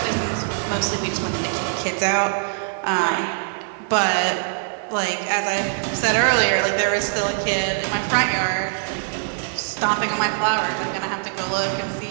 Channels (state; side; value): silent; left; 64 dB below the other